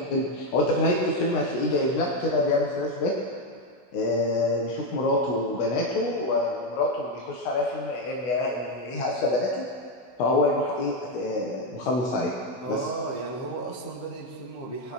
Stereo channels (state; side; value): late; right; 16 ms